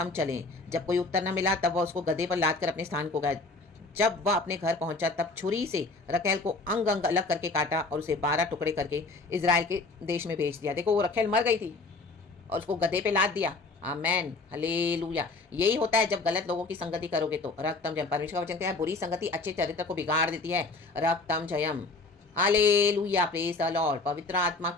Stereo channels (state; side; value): quieter; right; 3.6 dB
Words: चलें। जब कोई उत्तर न मिला तब वह उसको गधे पर लाद कर अपने स्थान को गया। जब वह अपने घर पहुंचा तब छुरी से रखेल को अंग अंग अलग करके काटा और उसे 12 टुकड़े करके इजराइल के देश में भेज दिया। देखो वो रखेल मर गई थी और उसको गधे पे लाद दिया। आमेन, हालेलुया। यही होता है जब गलत लोगों की संगति करोगे तो। रक्तम जयम। परमेश्वर का वचन कहता है बुरी संगति अच्छे चरित्र को बिगाड़ देती है। रक्तम जयम, हालेलुया, प्रेज द लॉर्ड। पवित्र आत्मा